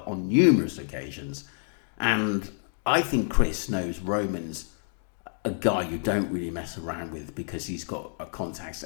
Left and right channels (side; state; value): right; silent; digital silence